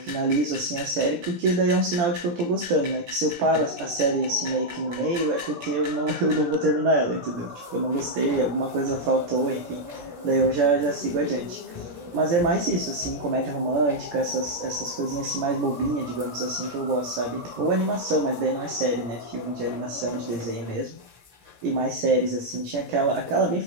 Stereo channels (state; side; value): late; left; 16 ms